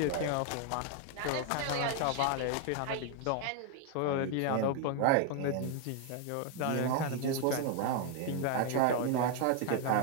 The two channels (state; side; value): different; both; correlation 0.00